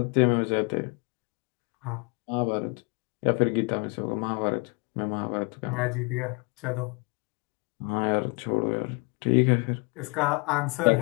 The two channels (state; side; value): quieter; right; 30.9 dB